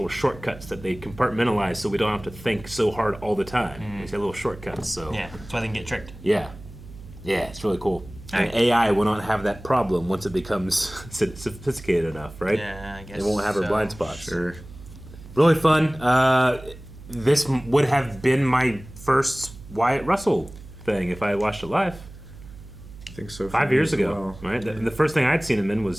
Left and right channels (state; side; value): noise; right; hum, 17 dB below the sound